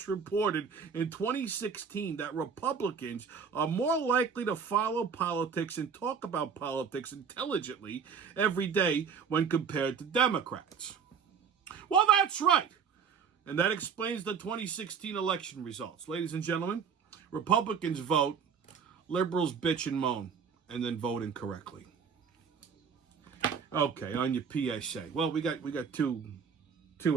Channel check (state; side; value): quieter; left; 6.5 dB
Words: in 2016 that Republicans are more likely to follow politics and talk about politics intelligently every day when compared to Democrats. Well, that's right. And that explains the 2016 election results. Ladies and gentlemen, Republicans vote, liberals bitch and moan, and then vote incorrectly. Okay, on your PSA. Well, we got two